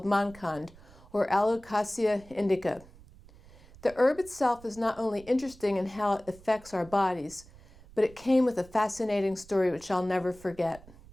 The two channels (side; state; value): right; noise; rumble, 22 dB below the sound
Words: Mankand, or Alocasia indica. The herb itself is not only interesting in how it affects our bodies, but it came with a fascinating story which I'll never forget.